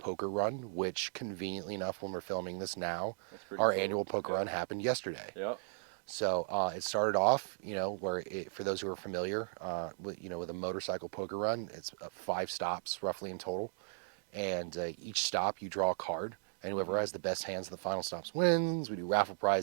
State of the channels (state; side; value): silent; left; digital silence